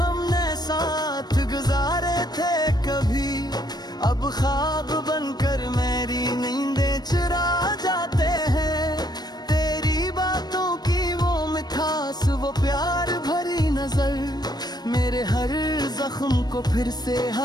हमने साथ गुजारे थे कभी, अब ख्वाब बनकर मेरी नींदें चुरा जाते हैं। तेरी बातों की वो मिठास, वो प्यार भरी नजर मेरे हर जख्म को फिर से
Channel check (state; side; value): late; right; 0.19 ms